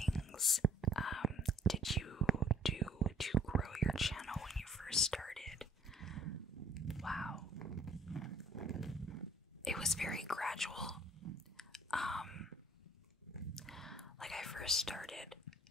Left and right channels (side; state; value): both; normal; correlation 0.58